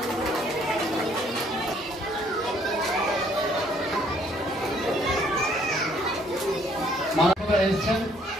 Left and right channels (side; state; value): both; normal; correlation 0.64